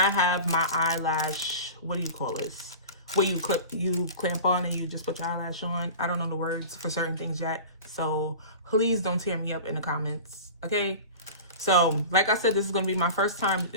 have my eyelash, what do you call this? Where you clamp on and you just put your eyelash on. I don't know the words for certain things yet, so please don't tear me up in the comments, okay? So like I said, this is gonna be my first time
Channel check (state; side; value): inverted; both; correlation -0.35